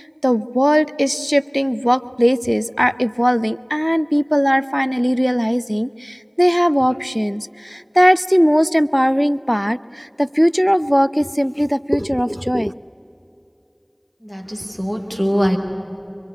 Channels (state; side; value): identical; both; correlation 1.00